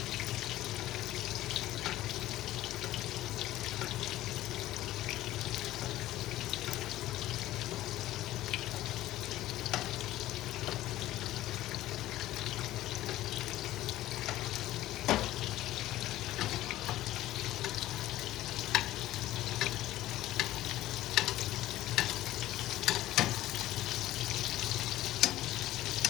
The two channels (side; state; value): right; quieter; 15.1 dB